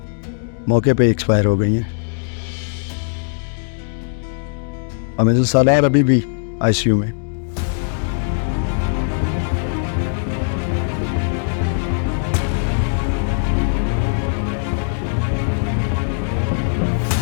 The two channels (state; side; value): silent; right; digital silence